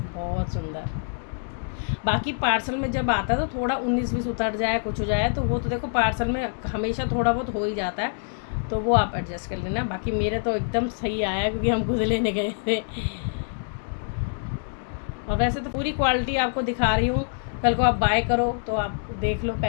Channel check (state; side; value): silent; right; digital silence